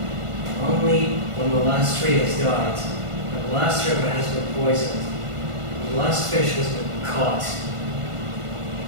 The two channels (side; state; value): left; late; 1.5 ms